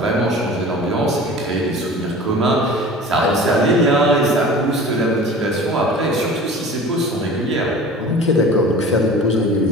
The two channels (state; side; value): normal; both; correlation 0.40